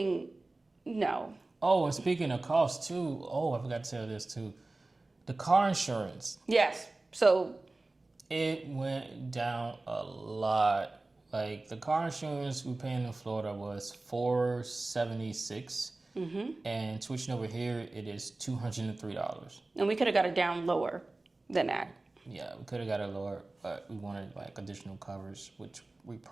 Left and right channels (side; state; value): left; quieter; 3.1 dB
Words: No. Oh, and speaking of cost too. Oh, I forgot to tell this too. The car insurance. Yes. So it went down a lot. Like the car insurance we paying in Florida was $476, and switching over here it is $203. And we could have got it down lower than that. Yeah, we could have got it lower, but we wanted like additional covers, which we